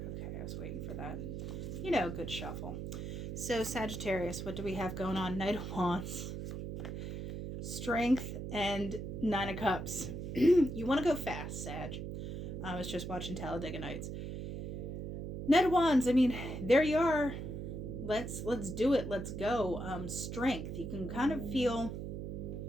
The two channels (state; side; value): noise; right; hum, 6 dB below the sound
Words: Okay, I was waiting for that. You know, good shuffle. So, Sagittarius, what do we have going on? Knight of Wands, Strength, and 9 of Cups. You want to go fast, Sag. I was just watching Talladega Nights. Knight of Wands, I mean, there you are. Let's do it. Let's go. Strength. You can kind of feel,